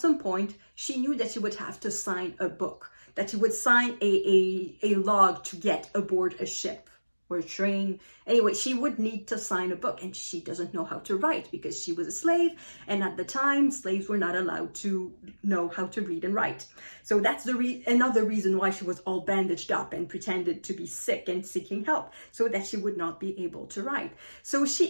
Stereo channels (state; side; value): inverted; both; correlation -1.00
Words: point, she knew that she would have to sign a book, that she would sign a log to get aboard a ship or a train. Anyway, she would need to sign a book, and she doesn't know how to write because she was a slave, and at the time, slaves were not allowed to know how to read and write. So that's another reason why she was all bandaged up and pretended to be sick and seeking help, so that she would not be able to write. So